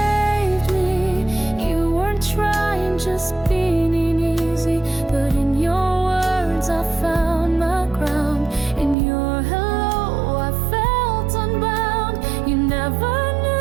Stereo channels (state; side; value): drops out; left; at 9.0 s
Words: me. You weren't trying, just being easy. But in your words I found my ground. In your hello I felt unbound. You never